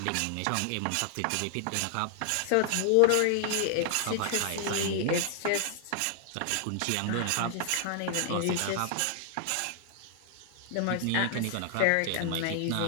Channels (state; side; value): different; both; correlation 0.00